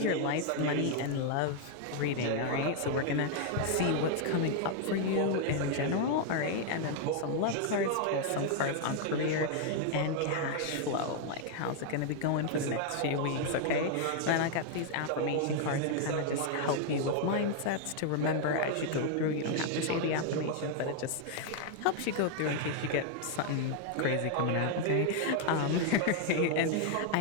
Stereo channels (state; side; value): different; both; correlation 0.00